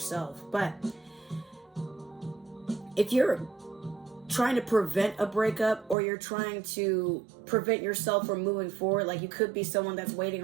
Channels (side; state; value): left; drops out; at 6.0 s